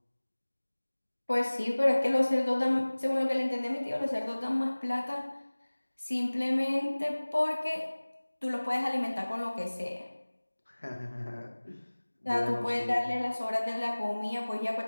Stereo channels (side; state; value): both; inverted; correlation -1.00